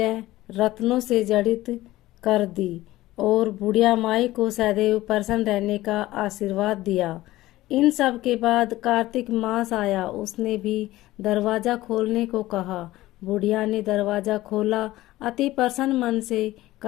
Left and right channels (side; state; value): right; quieter; 16.8 dB